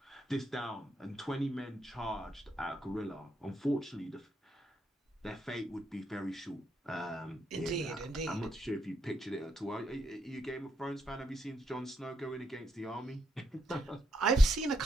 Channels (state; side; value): normal; both; correlation 0.79